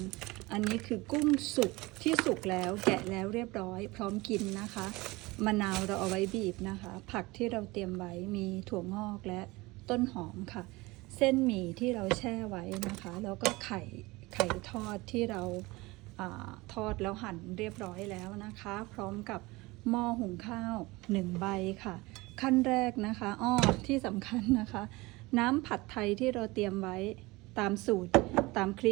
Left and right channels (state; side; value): quieter; left; 22.2 dB